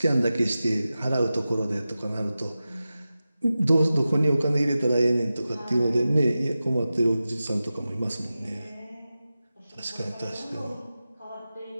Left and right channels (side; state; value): both; inverted; correlation -0.94